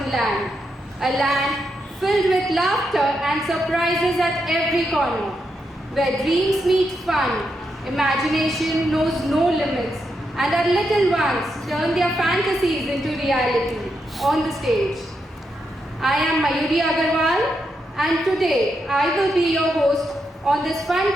Land, a land filled with laughter and surprises at every corner, where dreams meet fun, imagination knows no limits, and our little ones turn their fantasies into reality on the stage. I am Mayuri Agarwal, and today I will be your host on this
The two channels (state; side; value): normal; both; correlation 0.83